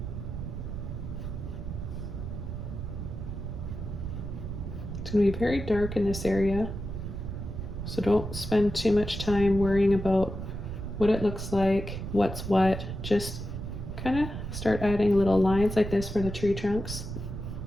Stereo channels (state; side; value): noise; right; rumble, 6 dB below the sound